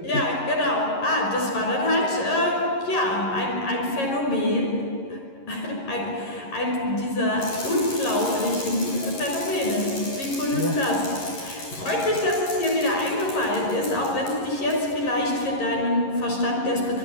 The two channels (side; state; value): right; late; 11 ms